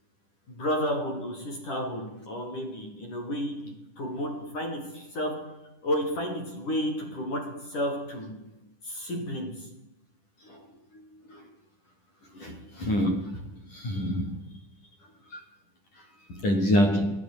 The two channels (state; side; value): late; right; 10 ms